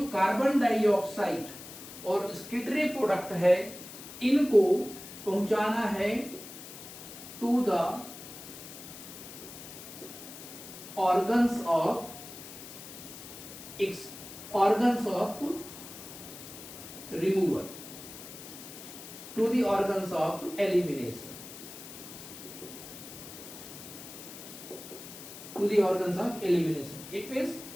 कार्बन डाइऑक्साइड और एक्सक्रीटरी प्रोडक्ट है इनको पहुंचाना है to the organs of removal, to the organs of elimination, to the organs of elimination. It means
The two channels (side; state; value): left; noise; hiss, 13 dB below the sound